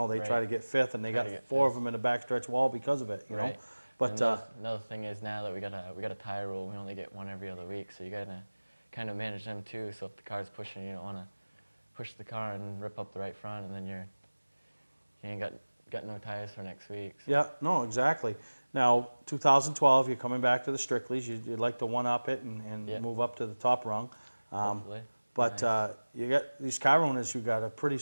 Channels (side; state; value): both; inverted; correlation -1.00